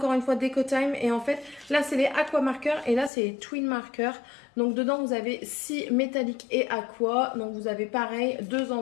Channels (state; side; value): drops out; right; at 3.1 s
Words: une fois, Decotime. Et en fait, là, c'est les Aqua Markers et là, c'est les Twin Markers. Donc, dedans, vous avez 6 métalliques et aqua. Donc, vous avez pareil, 2